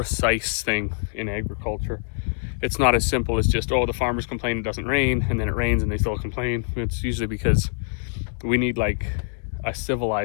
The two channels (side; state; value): right; silent; digital silence